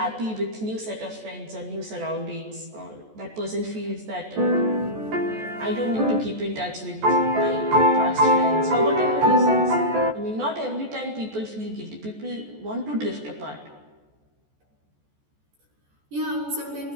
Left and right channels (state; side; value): late; left; 14 ms